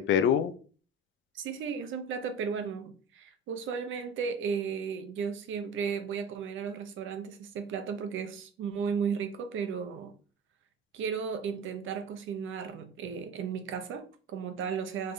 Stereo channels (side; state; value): both; normal; correlation 0.30